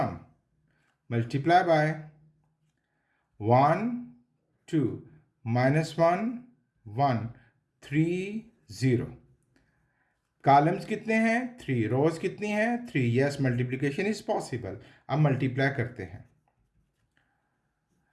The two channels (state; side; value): identical; both; correlation 1.00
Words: multiply by 1 2 -1 1 3 0। Columns कितने हैं? 3। रोज कितनी हैं? 3। Yes, multiplication is possible. अब मल्टीप्लाई करते हैं।